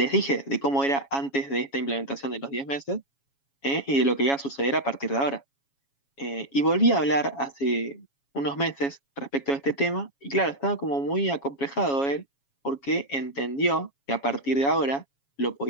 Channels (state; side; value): late; right; 7.2 ms